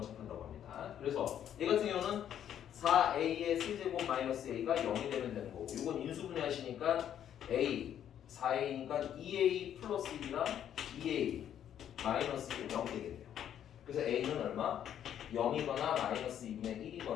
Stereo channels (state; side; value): quieter; right; 10.0 dB